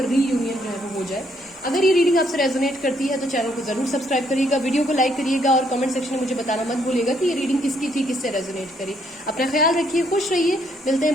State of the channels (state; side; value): normal; both; correlation 0.71